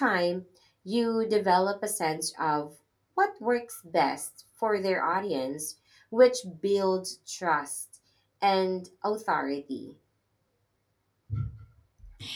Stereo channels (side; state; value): both; identical; correlation 1.00